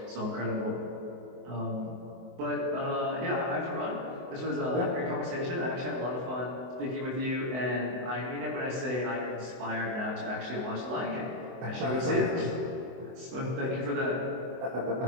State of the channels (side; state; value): left; late; 24 ms